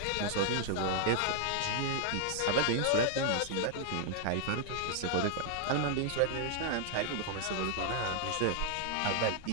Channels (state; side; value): different; both; correlation 0.00